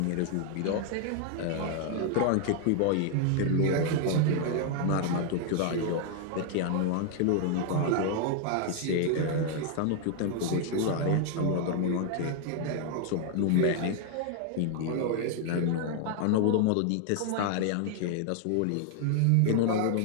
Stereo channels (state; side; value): different; both; correlation 0.00